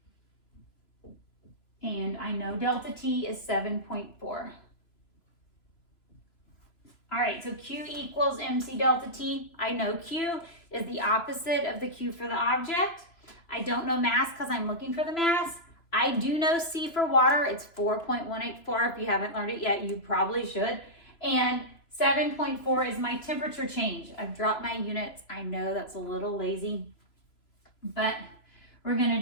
And I know delta T is 7.4. All right, so Q equals MC delta T. I know Q is the opposite of the Q for the object. I don't know mass because I'm looking for the mass. I do know C for water. It's 4.184. If you haven't learned it yet, you probably should. And 7.4 is my temperature change. I've dropped my units. I know that's a little lazy, but we're going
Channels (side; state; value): right; late; 3.0 ms